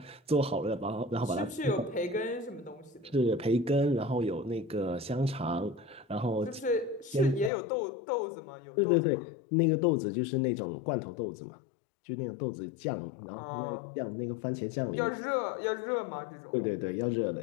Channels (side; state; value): right; drops out; at 7.5 s